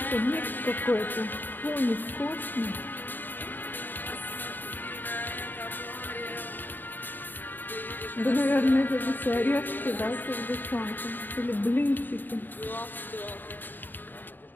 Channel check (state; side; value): late; right; 0.091 ms